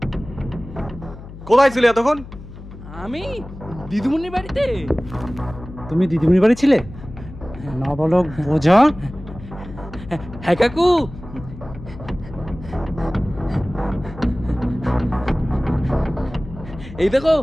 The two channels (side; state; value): left; noise; hum, 15 dB below the sound